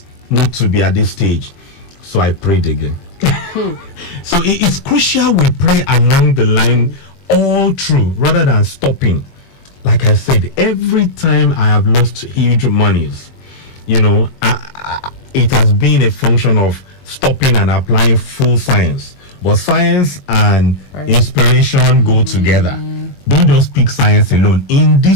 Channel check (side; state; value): right; late; 21 ms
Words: not to be at this stage. So I prayed again. So it's crucial we pray along the line all through rather than stopping. Like I said, every time I have lost huge monies, you know, it has been a function of stopping and applying full science. But science and inspiration go together. Don't just pick science alone in